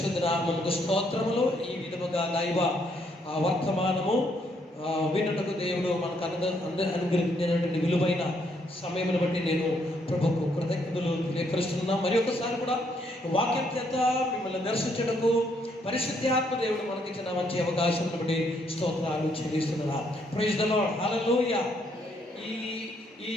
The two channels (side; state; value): both; normal; correlation 0.72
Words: నామమునకు స్తోత్రములు. ఈ విధముగా దైవ వర్తమానము వినుటకు దేవుడు మనకు అనుగ్రహించినటువంటి విలువైన సమయమును బట్టి నేను ప్రభుకు కృతజ్ఞతలు తెలియపరుస్తున్నాను. మరి ఒకసారి కూడా వాక్యం చేత మిమ్మల్ని దర్శించడకు పరిశుద్ధాత్మ దేవుడు మనకిచ్చిన మంచి అవకాశం బట్టి స్తోత్రాలు చెల్లిస్తున్నా. ప్రైజ్ ది లార్డ్, హల్లెలూయా. ఈ